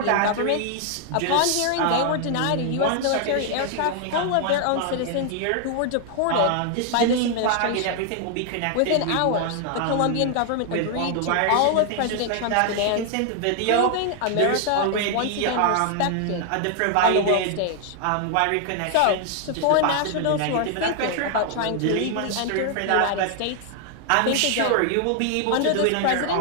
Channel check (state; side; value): different; both; correlation 0.00